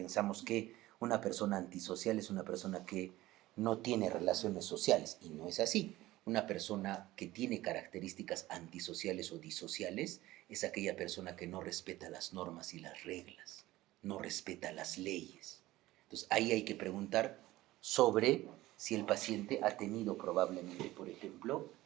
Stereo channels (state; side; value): quieter; left; 17.1 dB